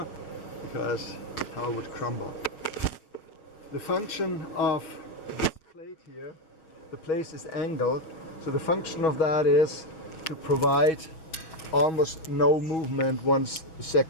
because the tower would crumble. The function of this plate here, the plate is angled, so the function of that is to provide almost no movement once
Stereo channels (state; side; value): late; right; 6.2 ms